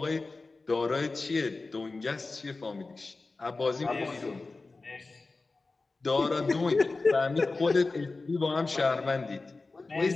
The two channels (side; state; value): right; quieter; 3.6 dB